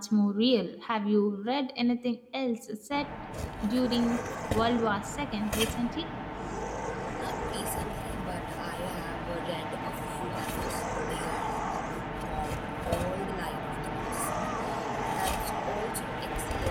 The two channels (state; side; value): identical; both; correlation 1.00